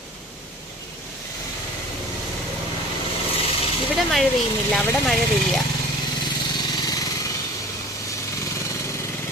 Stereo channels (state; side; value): normal; both; correlation 0.43